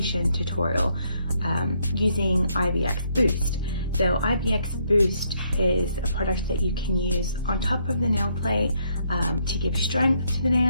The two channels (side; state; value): both; inverted; correlation -0.72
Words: tutorial using IBX Boost. So IBX Boost is a product that you can use on top of the nail plate to give strength to the